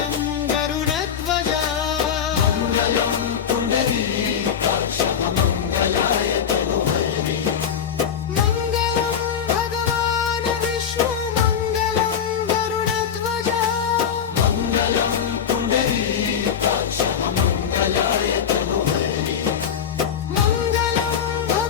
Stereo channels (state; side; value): quieter; right; 7.9 dB